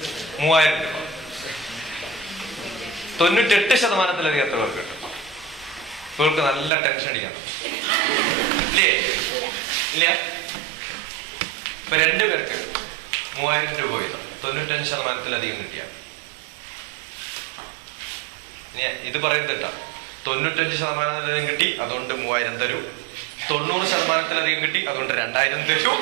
3000 രൂപ. 98%-ലധികം എത്ര പേർക്ക് കിട്ടും? ഇവർക്ക് നല്ല ടെൻഷൻ അടിക്കാൻ ഇല്ലേ? ഇല്ല. ഇപ്പൊ 2 പേർക്ക് 3000 രൂപ വീതം 95%-ലധികം കിട്ടിയ. ഇത് പറയരുത് കേട്ടാ. 95%-ലധികം കിട്ടി, അതുകൊണ്ട് 3000 തരൂ. 90%-ലധികം കിട്ടി, അതുകൊണ്ട് 2000 തരൂ.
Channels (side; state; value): left; drops out; at 6.7 s